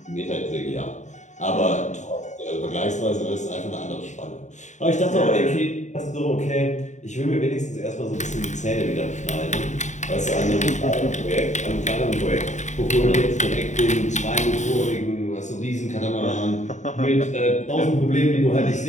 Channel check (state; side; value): late; right; 0.34 ms